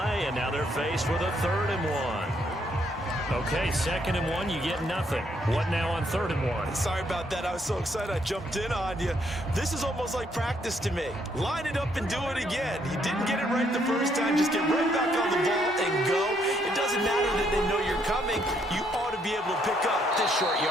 and now they're faced with a 3rd and 1. Okay, 2nd and 1, you get nothing. What now on 3rd and 1? Sorry about that. I was so excited I jumped in on you. This is almost like practice to me. Line it up and do it again. You didn't get it right the first time. Just get right back on the ball and go. It doesn't matter that they know you're coming. You ought to be able to pick up this short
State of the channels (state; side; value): normal; both; correlation 0.71